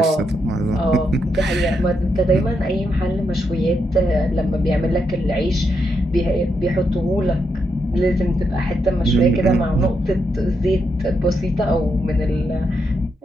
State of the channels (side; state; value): both; normal; correlation 0.81